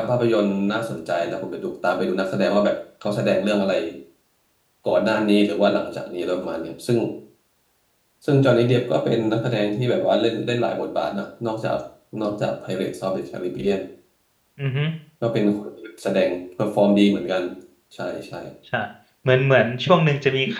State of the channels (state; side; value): identical; both; correlation 1.00